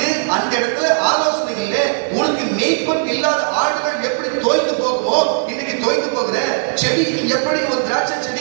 அந்த இடத்துல ஆலோசனைகள்ல உனக்கு மேய்ப்பன் இல்லாத ஆடுகள் எப்படி தோய்ந்து போகுமோ, இன்னைக்கு தோய்ந்து போகிற செடி எப்படி ஒரு திராட்சை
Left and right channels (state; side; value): silent; left; digital silence